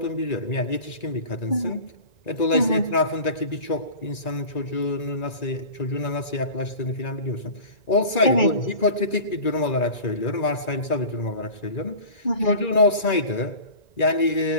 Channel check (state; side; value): late; right; 1.9 ms